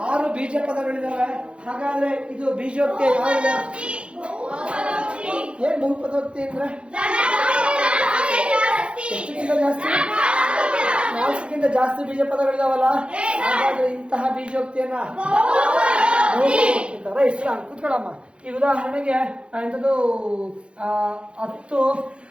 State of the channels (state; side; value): late; left; 0.058 ms